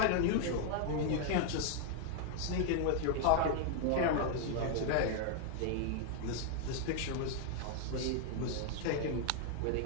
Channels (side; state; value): both; different; correlation 0.00